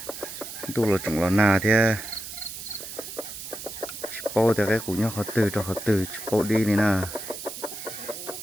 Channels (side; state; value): right; noise; hiss, 10 dB below the sound